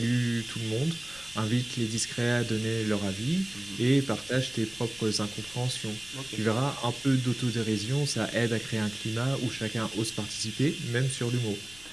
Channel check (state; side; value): noise; left; rumble, 21 dB below the sound